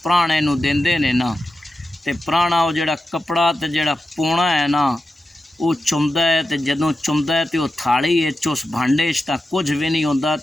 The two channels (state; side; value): normal; both; correlation 0.91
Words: पुराने नूं देंदे ने ना, ते पुराना वो जिहड़ा कपड़ा ते जिहड़ा पौना है ना वो चुमदा है। ते जदों चुमदा है तो वो थाली उस भांडे तां कुछ भी नहीं होंदा।